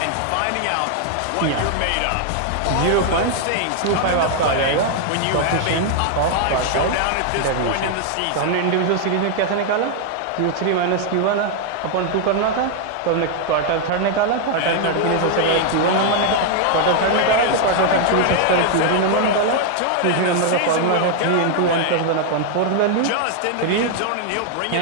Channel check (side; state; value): both; different; correlation 0.00